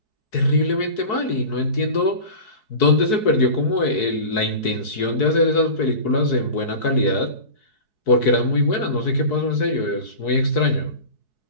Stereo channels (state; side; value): late; right; 4.7 ms